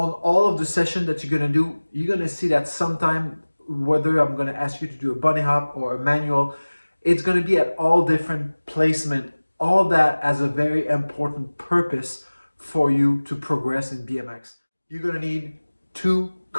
all of the sessions that you're gonna do, you're gonna see that sometime, whether I'm gonna ask you to do a bunny hop or a manual, it's gonna be at all different placement. All that has a very important purpose for you to progress in BMX. You're gonna need two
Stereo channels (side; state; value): both; inverted; correlation -1.00